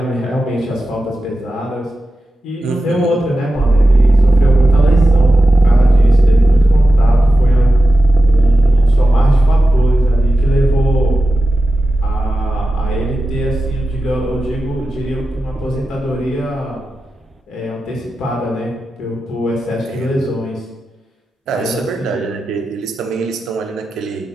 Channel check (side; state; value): both; normal; correlation 0.92